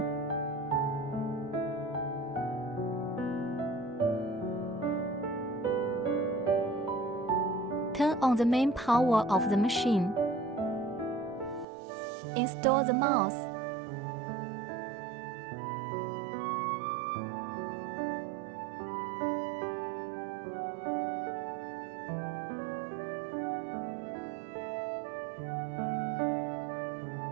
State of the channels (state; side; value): drops out; left; at 11.7 s